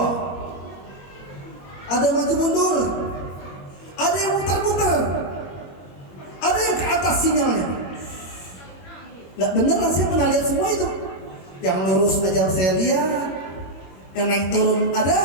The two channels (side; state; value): right; late; 22 ms